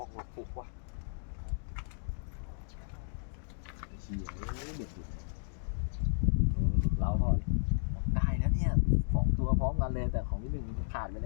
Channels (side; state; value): right; silent; digital silence